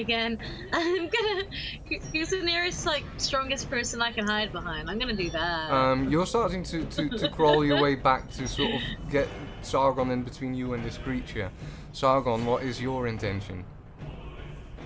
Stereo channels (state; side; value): identical; both; correlation 1.00